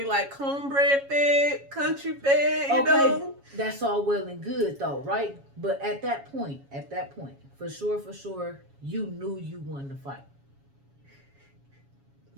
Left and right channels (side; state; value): left; late; 7.2 ms